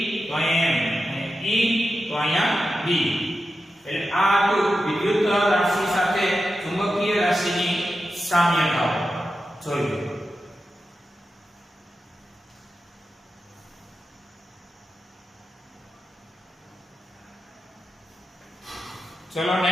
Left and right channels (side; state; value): both; normal; correlation 0.90